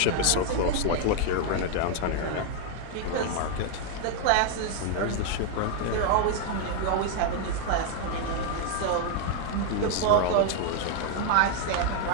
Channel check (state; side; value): different; both; correlation 0.00